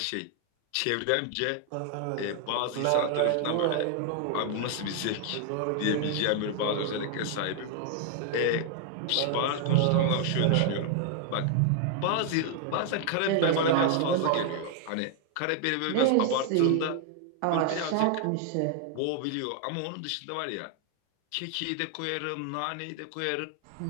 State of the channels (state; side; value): different; both; correlation 0.00